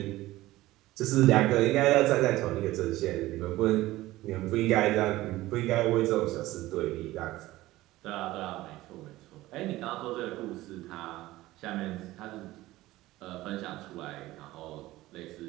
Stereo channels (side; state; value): left; quieter; 17.3 dB